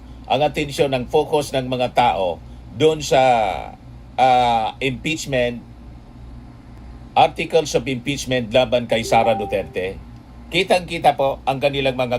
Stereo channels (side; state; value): both; identical; correlation 1.00